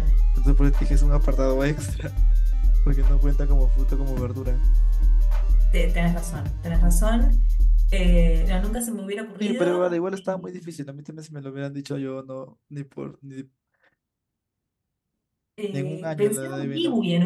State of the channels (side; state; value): both; identical; correlation 1.00